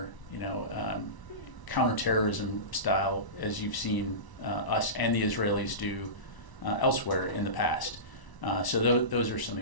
counterterrorism style, as you've seen us and the Israelis do elsewhere in the past. So those are some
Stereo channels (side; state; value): right; late; 1.0 ms